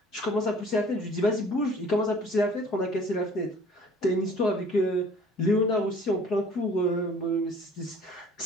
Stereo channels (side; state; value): both; normal; correlation 0.52